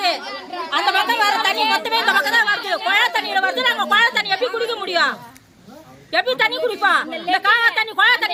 அந்த பக்கம் வர தண்ணி மொத்தமே இந்த பக்கம் தான் வருது. குழாய் தண்ணியில வருது. நாங்க குழாய் தண்ணி எப்படி குடிக்க முடியும்? எப்படி தண்ணி குடிப்போம்? இந்த காவா தண்ணி குழாய்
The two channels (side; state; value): both; identical; correlation 1.00